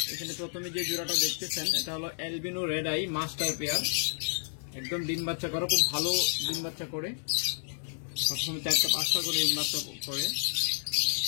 এখানে প্রথমে যে জোড়াটা দেখতেছেন, এটা হলো albino red eye master pair. একদম ডিম বাচ্চা করে, খুব ভালো ডিম বাচ্চা করে, সবসময় 4টা-5টা করে ডিম বাচ্চা করে,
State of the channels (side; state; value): right; silent; digital silence